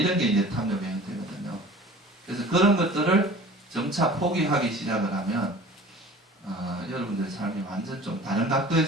게 이제 탐욕의 형태거든요. 그래서 그런 것들을 점차 포기하기 시작을 하면 여러분들의 삶이 완전 좀 다른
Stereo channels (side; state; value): both; normal; correlation 0.44